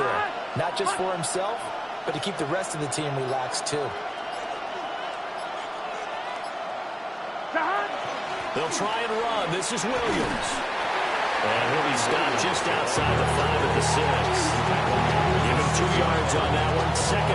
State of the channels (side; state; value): both; identical; correlation 1.00